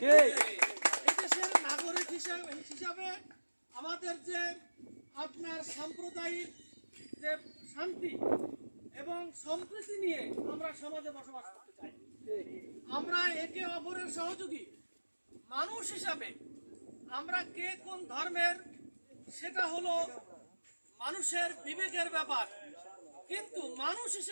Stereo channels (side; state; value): both; inverted; correlation -1.00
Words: এদেশের নাগরিক হিসাবে আমাদের যে আপনার সাম্প্রদায়িক যে শান্তি এবং সম্প্রীতি নিয়ে আমরা সমাজে বসবাস করতে চাই। আমরা একে অপরের সহযোগী মানুষ হিসাবে, আমরা কে কোন ধর্মের সেটা হলো মানুষের বিবেকের ব্যাপার, কিন্তু মানুষ